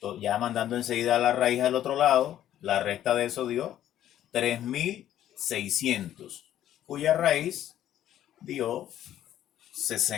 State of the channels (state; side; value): quieter; right; 11.8 dB